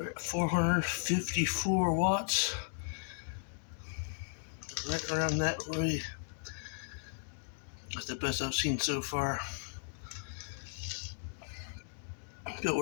at 454 watts. Right around that way. That's the best I've seen so far. But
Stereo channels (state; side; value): silent; right; digital silence